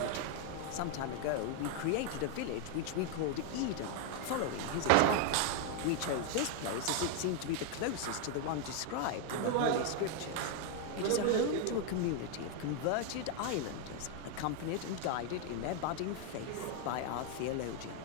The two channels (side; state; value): both; different; correlation 0.00